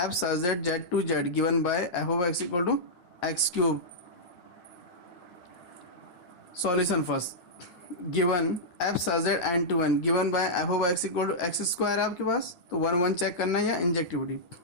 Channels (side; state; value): right; late; 11 ms